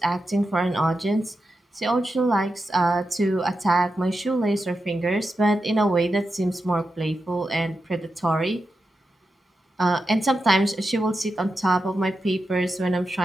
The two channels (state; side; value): normal; both; correlation 0.89